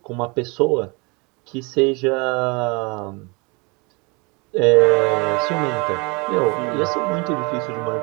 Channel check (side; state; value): left; quieter; 29.0 dB